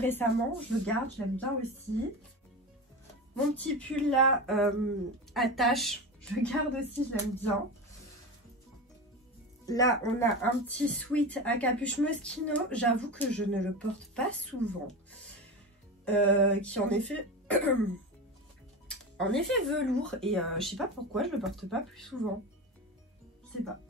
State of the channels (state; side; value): normal; both; correlation 0.24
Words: Je le garde, je l'aime bien aussi. Mon petit pull là, à taches, je le garde aussi, je l'aime bien. Là, on a un petit sweat à capuche Moschino. J'avoue que je ne le porte pas souvent. Qui en effet... en effet velours. Et je sais pas pourquoi je le porte pas plus souvent. Je sais pas.